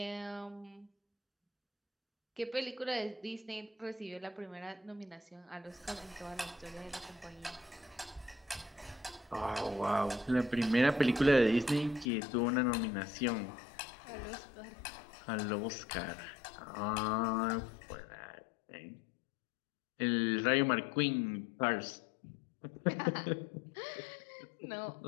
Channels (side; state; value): right; drops out; at 12.1 s